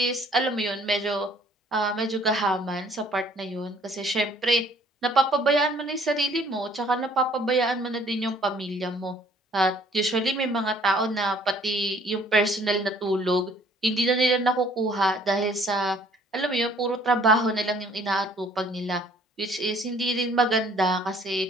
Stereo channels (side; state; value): both; normal; correlation 0.58